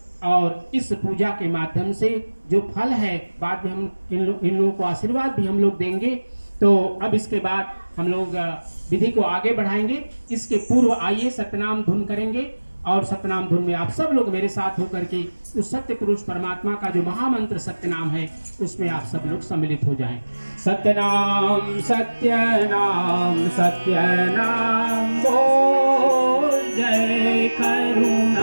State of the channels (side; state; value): both; inverted; correlation -1.00